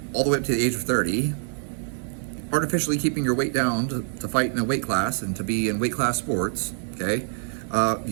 all the way up to the age of 30 artificially keeping your weight down to fight in a weight class and to be in weight class sports, okay,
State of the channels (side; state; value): left; silent; digital silence